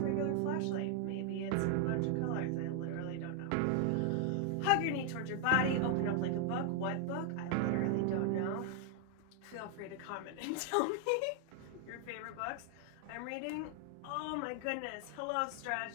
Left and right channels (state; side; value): different; both; correlation 0.00